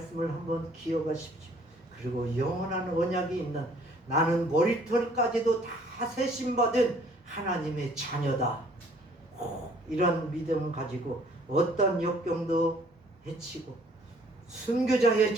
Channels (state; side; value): normal; both; correlation 0.58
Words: 한번 기억하십시오. 그리고 영원한 언약이 있는 나는 머리털까지도 다 세심받은 하나님의 자녀다. 이런 믿음 가지고 어떤 역경도 헤치고 순교자의